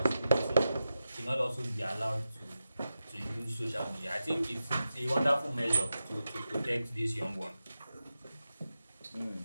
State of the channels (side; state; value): both; inverted; correlation -0.91